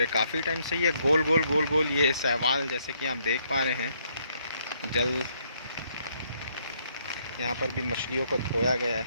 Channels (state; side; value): inverted; both; correlation -0.71